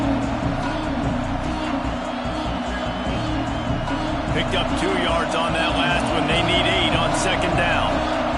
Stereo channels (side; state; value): both; identical; correlation 1.00